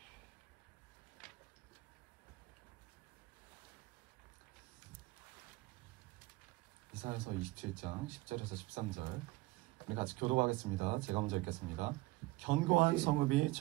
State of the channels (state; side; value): quieter; left; 20.8 dB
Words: 이사야서 27장 10절에서 13절 우리 같이 교독하겠습니다. 제가 먼저 읽겠습니다. 견고한 성읍이